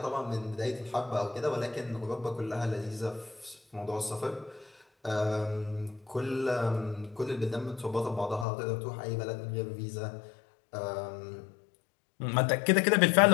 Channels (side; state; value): right; drops out; at 8.5 s